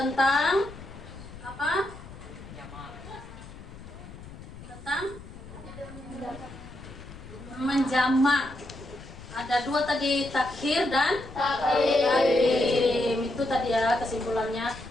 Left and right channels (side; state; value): left; noise; rumble, 16 dB below the sound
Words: apa? Tentang menjamak. Ada dua tadi, takhir dan takdim. Itu tadi ya kesimpulannya.